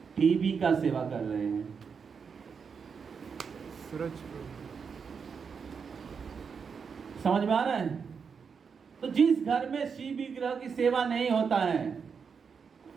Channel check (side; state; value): left; quieter; 6.0 dB